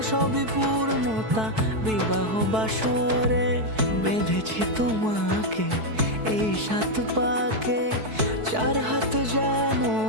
সবই পূর্ণতা বিবাহ বাসরে। বেঁধেছি তোমাকে এই 7 পাকে, 4 হাত যেন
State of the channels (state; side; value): late; left; 4.6 ms